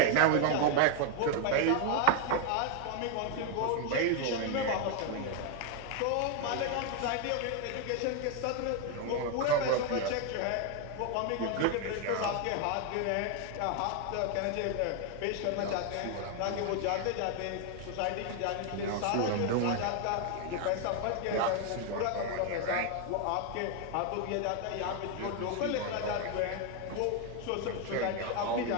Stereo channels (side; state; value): both; different; correlation 0.01